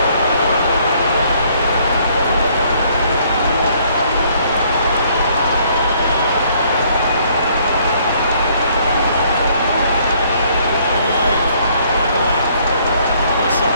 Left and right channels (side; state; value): both; inverted; correlation -0.64